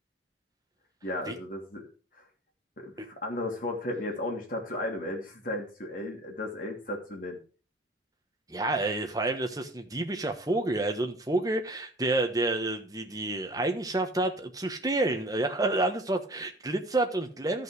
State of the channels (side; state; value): both; normal; correlation 0.44